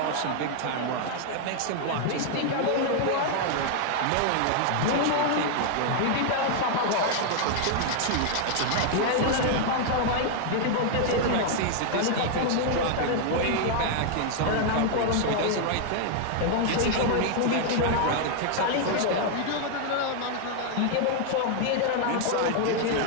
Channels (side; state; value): both; different; correlation 0.00